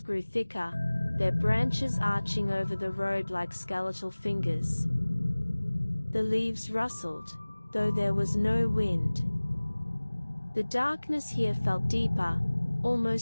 grew thicker, their branches arching over the road like skeletal fingers. The leaves rustled, though there was no wind. The darkness here felt deeper,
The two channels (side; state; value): both; inverted; correlation -1.00